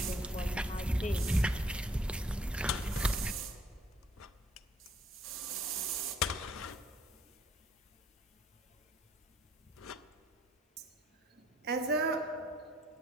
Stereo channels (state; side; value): normal; both; correlation 0.63